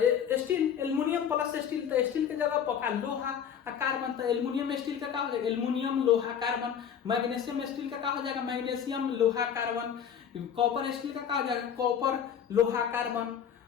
स्टील, एल्युमिनियम प्लस स्टील, तो स्टील के जगह पका लोहा और कार्बन, तो एल्युमिनियम स्टील का क्या हो जाएगा? एल्युमिनियम लोहा कार्बन। मैग्नीशियम स्टील का क्या हो जाएगा? मैग्नीशियम लोहा कार्बन। कॉपर स्टील का क्या हो जाएगा? कॉपर लोहा कार्बन।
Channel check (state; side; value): quieter; right; 8.3 dB